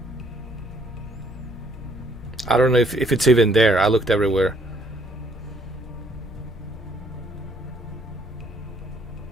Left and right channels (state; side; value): normal; both; correlation 0.64